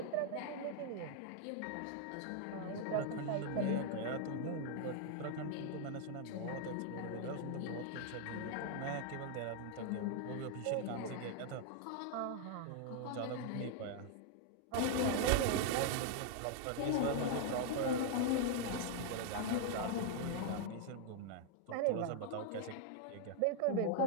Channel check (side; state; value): both; different; correlation 0.00